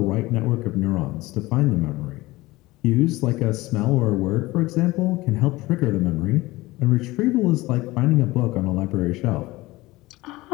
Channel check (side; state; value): right; quieter; 19.8 dB